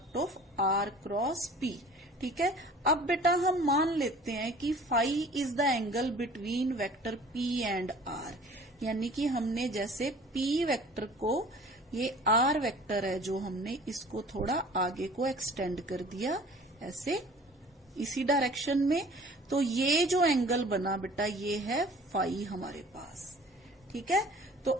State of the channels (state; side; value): normal; both; correlation 0.47